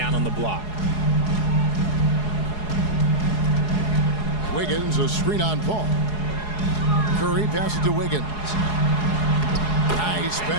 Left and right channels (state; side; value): late; right; 4.8 ms